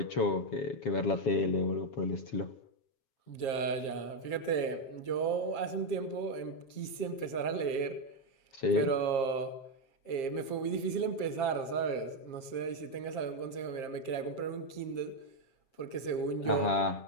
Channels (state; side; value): late; right; 7.5 ms